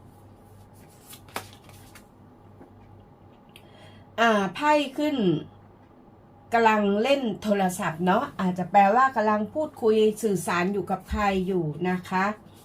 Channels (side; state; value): both; identical; correlation 1.00